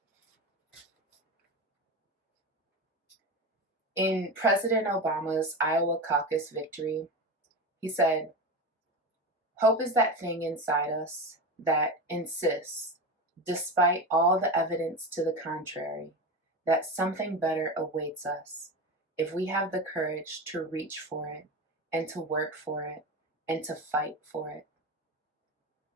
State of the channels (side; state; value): both; normal; correlation 0.23